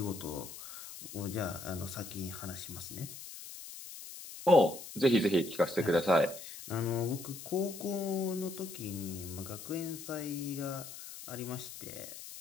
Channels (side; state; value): left; noise; hiss, 12 dB below the sound